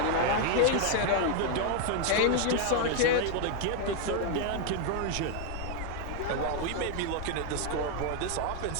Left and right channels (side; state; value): both; different; correlation 0.00